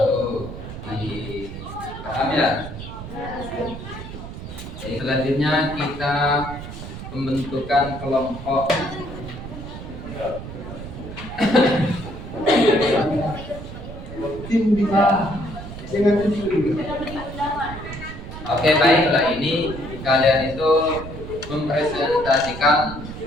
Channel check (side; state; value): right; noise; rumble, 10 dB below the sound